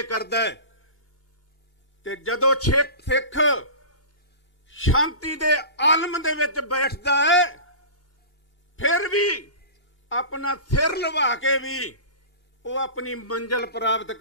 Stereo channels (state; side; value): late; right; 2.8 ms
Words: ਕਰਦਾ ਹੈ। ਤੇ ਜਦੋਂ ਸਿੱਖ ਸ਼ਾਂਤੀ ਦੇ ਆਲਮ ਦੇ ਵਿੱਚ ਬੈਠਦਾ ਹੈ, ਫਿਰ ਵੀ ਆਪਣਾ ਸਿਰ ਲਵਾ ਕੇ ਵੀ ਉਹ ਆਪਣੀ ਮੰਜ਼ਿਲ ਪ੍ਰਾਪਤ